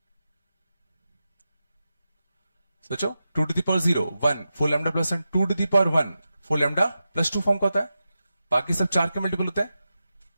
सोचो 2 to the power 0 1 4 lambda plus 1, 2 to the power 1 4 lambda plus 2 form का होता है। बाकी सब 4 के मल्टीपल होते हैं,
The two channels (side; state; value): both; inverted; correlation -0.91